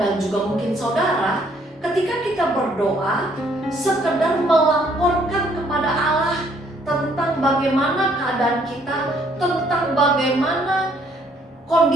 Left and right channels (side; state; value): both; normal; correlation 0.65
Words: dan juga mungkin saudara, ketika kita berdoa sekedar melaporkan kepada Allah tentang bagaimana keadaan kita, tentang bagaimana